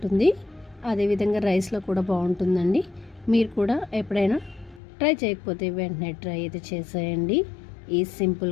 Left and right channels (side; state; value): right; drops out; at 4.8 s